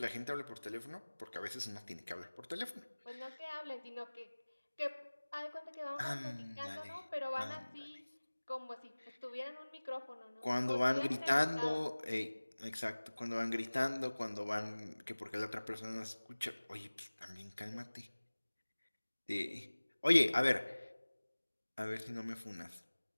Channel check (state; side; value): inverted; both; correlation -1.00